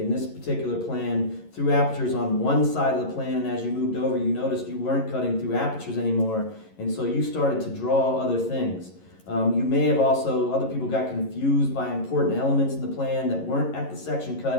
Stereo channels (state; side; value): late; right; 11 ms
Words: this particular plan, through apertures on one side of the plan, and as you moved over you noticed you weren't cutting through apertures anymore, and so you started to draw other things. You may have also, other people got confused by important elements in the plan that weren't at the section